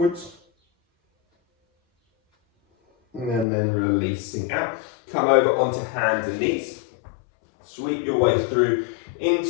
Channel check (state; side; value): drops out; right; at 3.5 s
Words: And then releasing out. Come over onto hands and knees. Sweep your way through